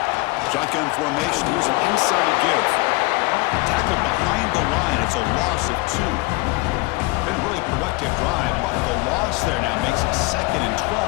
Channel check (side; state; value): right; quieter; 24.1 dB